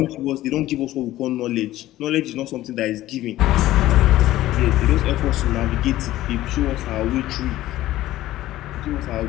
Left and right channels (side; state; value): right; quieter; 15.2 dB